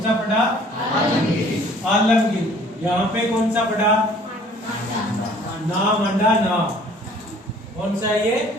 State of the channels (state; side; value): normal; both; correlation 0.54